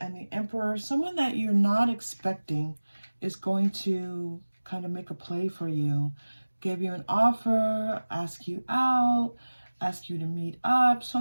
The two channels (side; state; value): both; inverted; correlation -1.00